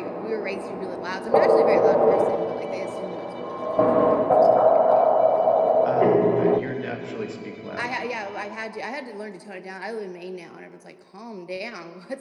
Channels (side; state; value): both; identical; correlation 1.00